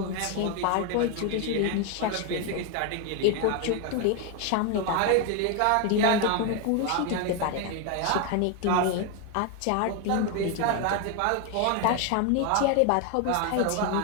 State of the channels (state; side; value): different; both; correlation 0.01